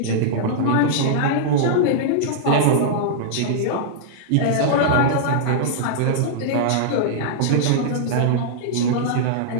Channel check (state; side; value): different; both; correlation -0.02